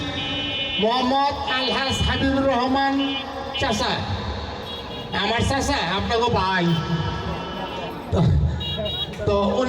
মোহাম্মদ আলহাজ হাবিবুর রহমান চাচা, আমার চাচা আপনাকে ভাই, তো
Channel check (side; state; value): both; identical; correlation 1.00